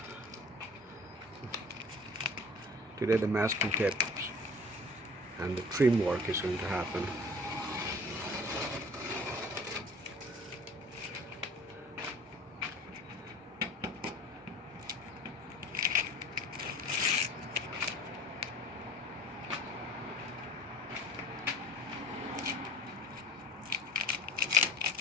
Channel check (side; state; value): both; normal; correlation 0.45